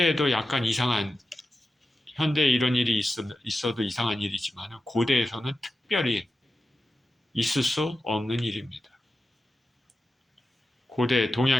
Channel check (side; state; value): both; normal; correlation 0.92